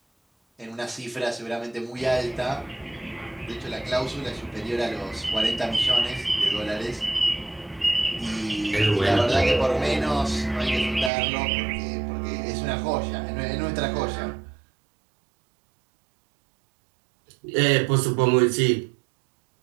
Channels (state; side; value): drops out; left; at 11.1 s